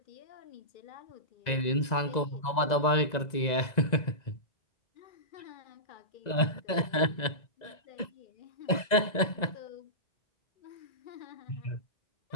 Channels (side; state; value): right; late; 2.0 ms